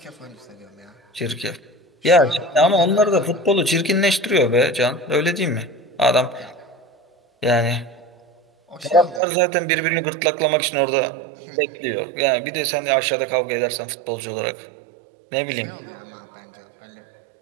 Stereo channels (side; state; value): left; drops out; at 9.2 s